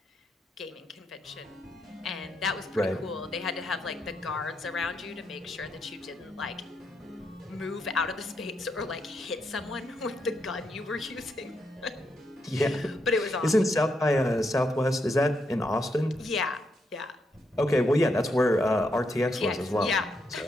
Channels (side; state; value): both; normal; correlation 0.80